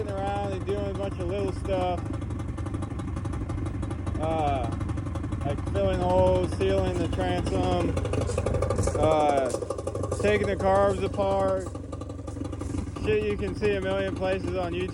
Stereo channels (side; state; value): both; identical; correlation 1.00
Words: around and doing a bunch of little stuff. Like filling holes, sealing the transom, taking the carbs apart. Shit you can see a million places on